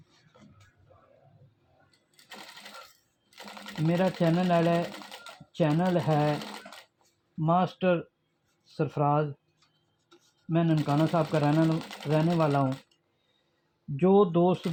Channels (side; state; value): both; identical; correlation 1.00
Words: मेरा चैनल है मास्टर सरफराज। मैं ननकाना साहब का रहने वाला हूँ। जो दोस्त